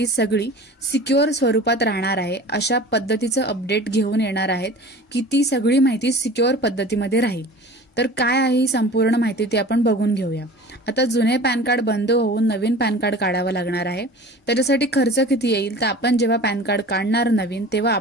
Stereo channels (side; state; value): both; normal; correlation 0.40